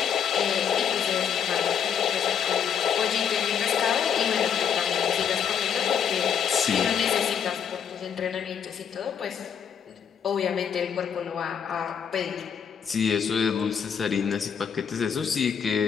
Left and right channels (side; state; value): right; quieter; 7.8 dB